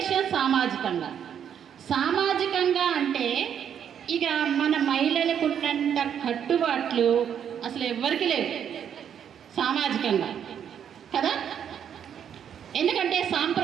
సామాజికంగా. సామాజికంగా అంటే ఇక మన మహిళలకు ఉన్నంత కట్టుబాట్లు అసలు ఎవ్వరికి లేవు సామాజికంగా కదా. ఎందుకంటే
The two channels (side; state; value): left; quieter; 8.7 dB